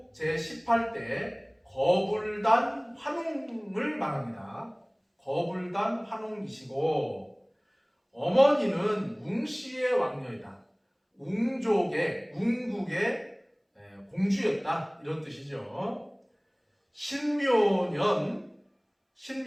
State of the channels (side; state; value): both; identical; correlation 1.00